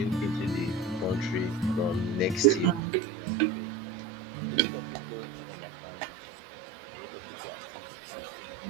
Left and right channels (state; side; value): drops out; left; at 2.8 s